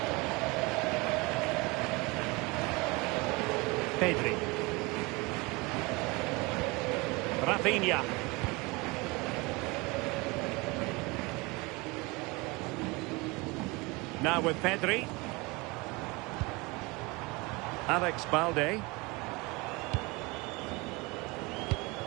Pedri. Rafinha. Now with Pedri. Alex Balde.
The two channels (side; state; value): left; quieter; 25.2 dB